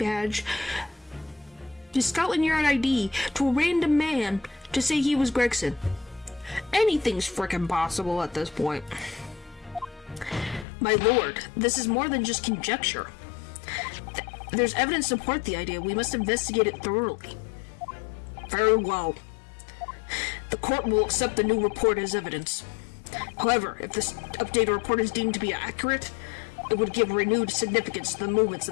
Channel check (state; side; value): drops out; right; at 10.7 s